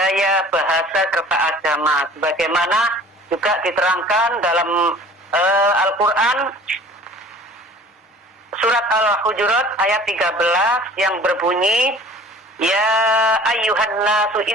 bahasa, serta agama. Sebagaimana juga diterangkan dalam Al-Quran surat Al-Hujurat ayat 13 yang berbunyi, ya ayyuhan nasu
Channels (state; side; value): normal; both; correlation 0.46